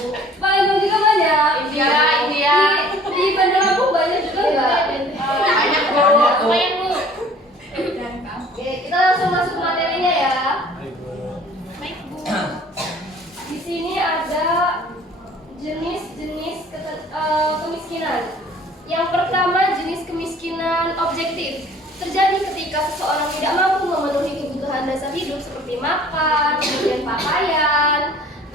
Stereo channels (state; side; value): normal; both; correlation 0.51